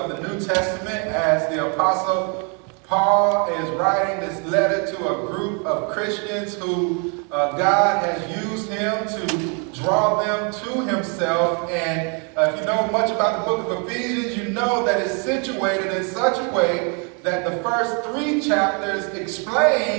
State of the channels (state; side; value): quieter; left; 36.6 dB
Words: the New Testament as the Apostle Paul is writing this letter to a group of Christians who God has used him to draw them to himself. And if you know much about the book of Ephesians, you know that it's situated in such a way that the first 3 chapters